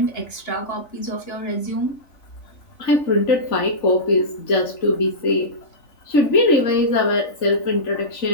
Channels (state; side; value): late; right; 3.5 ms